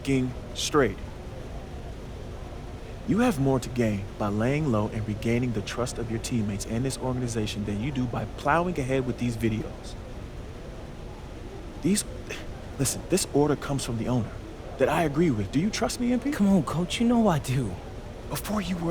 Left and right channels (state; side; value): identical; both; correlation 1.00